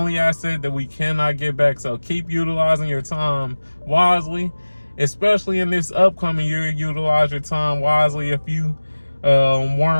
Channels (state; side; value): inverted; both; correlation -1.00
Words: asset that we cannot get back. So keep utilizing your time wisely, especially in this upcoming year. Utilize your time wisely if you